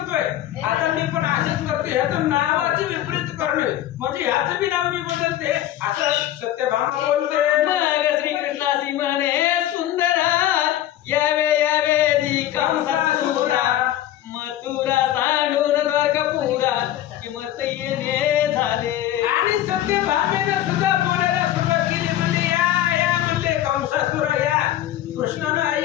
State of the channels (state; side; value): quieter; right; 12.9 dB